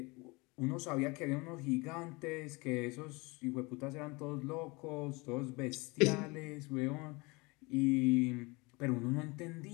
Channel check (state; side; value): quieter; right; 25.9 dB